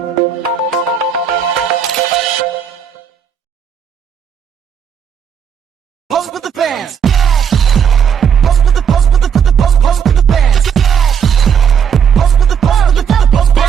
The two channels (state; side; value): quieter; left; 7.5 dB